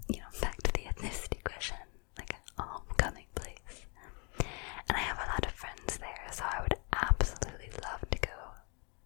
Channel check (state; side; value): quieter; right; 34.2 dB